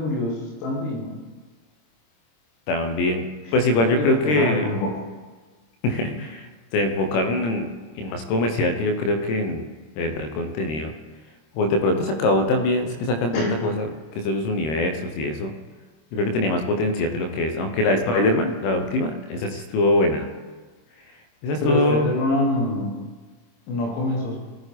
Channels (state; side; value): late; right; 26 ms